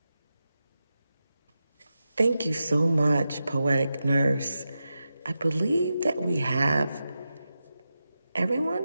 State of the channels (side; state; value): both; inverted; correlation -0.90